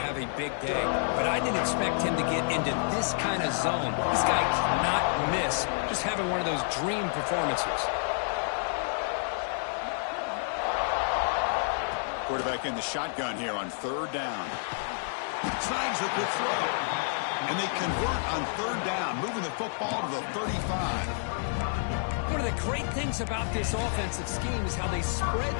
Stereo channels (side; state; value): right; silent; digital silence